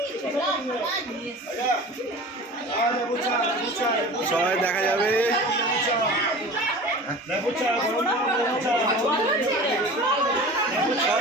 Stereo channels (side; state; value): both; normal; correlation 0.37